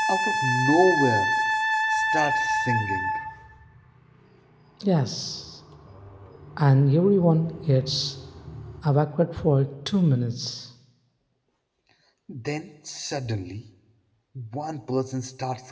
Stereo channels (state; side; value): identical; both; correlation 1.00